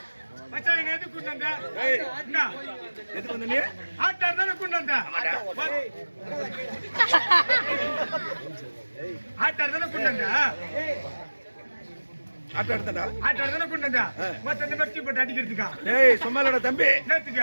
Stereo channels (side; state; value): both; inverted; correlation -1.00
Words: மச்சான் என்ன எதுக்கு கொண்டு வந்த? ஏய் என்ன எதுக்கு வந்த நீ ஆட்டார் தானே கொண்டு வந்த? ஆட்டார் தானே கொண்டு வந்த? ஆட்ட எடுத்தடா ஆட்டார் தானே கொண்டு வந்த? மத்த இந்த மெட்டி போட்டு அடிக்கிறதுக்கா? ஏய் சும்மாலடா தம்பி